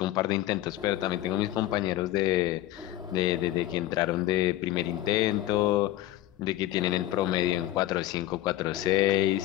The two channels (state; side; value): quieter; right; 14.7 dB